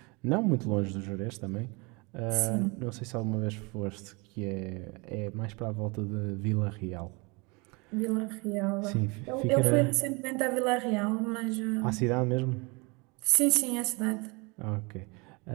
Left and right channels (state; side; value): quieter; left; 28.3 dB